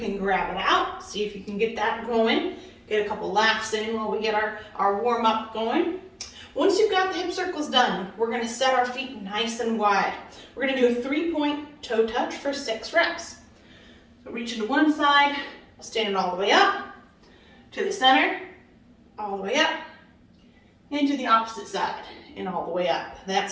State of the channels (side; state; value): both; identical; correlation 1.00